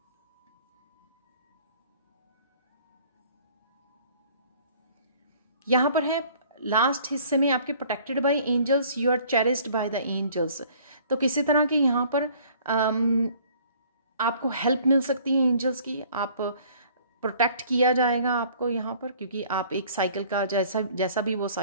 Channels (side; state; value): both; inverted; correlation -0.55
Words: यहाँ पर है लास्ट हिस्से में आपके protected by angels, you are cherished by the angels. तो किसी तरह की यहाँ पर आपको हेल्प मिल सकती है एंजल्स की, आप प्रोटेक्ट किया जाएगा आपको यहाँ पर, क्योंकि आप एक साइकिल का जैसा भी वो